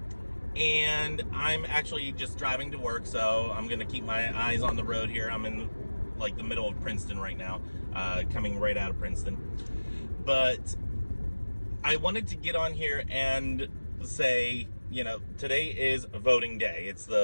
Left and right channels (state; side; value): inverted; both; correlation -1.00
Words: and I'm actually just driving to work, so I'm going to keep my eyes on the road here. I'm in like the middle of Princeton right now, coming right out of Princeton. But I wanted to get on here and say, you know, today is voting day. It's